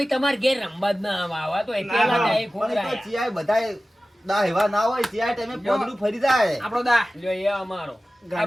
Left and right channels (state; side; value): normal; both; correlation 0.96